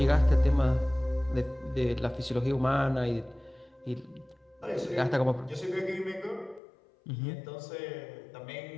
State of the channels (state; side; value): drops out; right; at 6.6 s